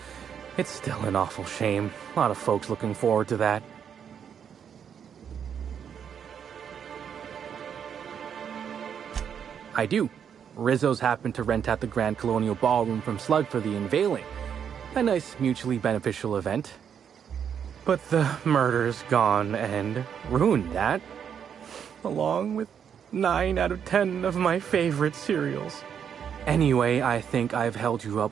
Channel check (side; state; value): left; quieter; 8.0 dB